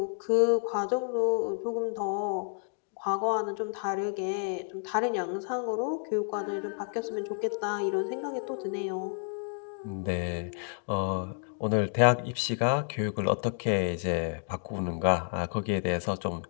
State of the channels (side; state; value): right; silent; 58 dB below the other